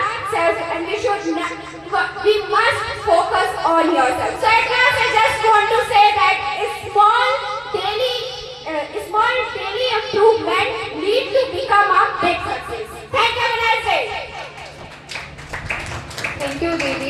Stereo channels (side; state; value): both; identical; correlation 1.00